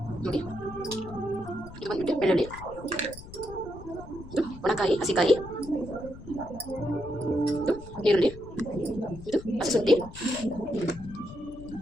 ನೋಡಿ. ಇದು ಬಂದ್ಬಿಟ್ಟು ಬೆಳ್ಳುಳ್ಳಿ, ಇದು ಒಣಕಾಯಿ ಹಸಿಕಾಯಿ, ಇದು ಈರುಳ್ಳಿ, ಇದು ಹಸಿಶುಂಠಿ,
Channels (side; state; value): left; noise; rumble, 15 dB below the sound